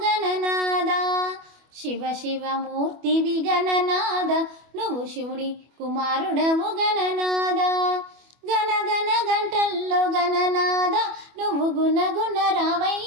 గణనాద. శివ శివ మూర్తివి గణనాద నువ్వు శివుడి కుమారుడవు గణనాద. గణ గణ గంటల్లో గణనాద నువ్వు గుణ గుణ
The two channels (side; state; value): left; late; 25 ms